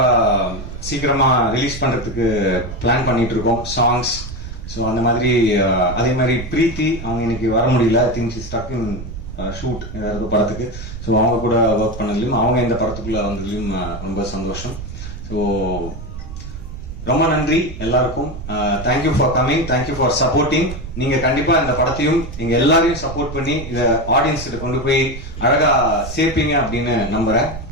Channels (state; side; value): noise; right; rumble, 10 dB below the sound